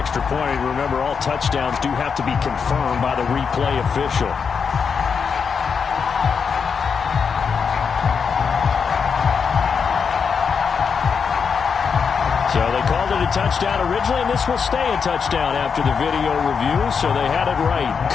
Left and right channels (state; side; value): quieter; right; 6.1 dB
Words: point, remember all touchdowns do have to be confirmed by the replay official. So they called it a touchdown originally, and this will stay a touchdown after the video review, so they had it right.